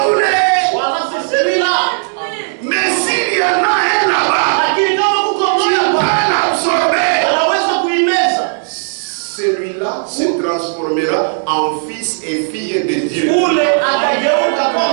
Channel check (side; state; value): left; silent; 68 dB below the other